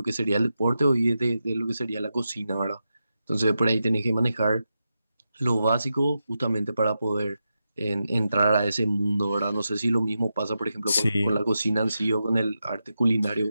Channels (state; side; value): inverted; both; correlation -0.89